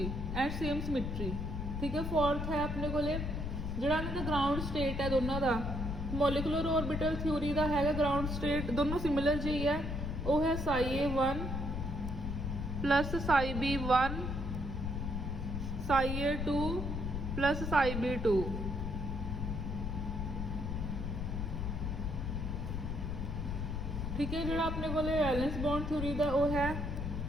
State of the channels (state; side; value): noise; left; rumble, 3 dB below the sound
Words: and same symmetry ठीक है। फोर्थ है अपने को जोड़ा ग्राउंड स्टेट है दोनों का मॉलिकुलर ऑर्बिटल थ्योरी का है ग्राउंड स्टेट दोनों सिमिलर जी है वो है ψA1 plus ψB1 ψA2 plus ψB2 ठीक है। जो अपने को वैलेंस बॉन्ड थ्योरी का वो है